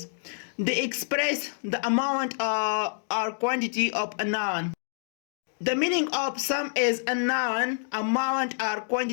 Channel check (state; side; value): silent; right; digital silence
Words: They express the amount or quantity of a noun. The meaning of some is a noun, amount or